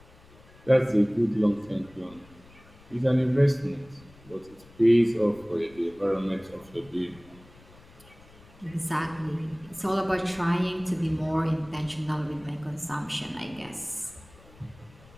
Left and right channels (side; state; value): left; noise; rumble, 24 dB below the sound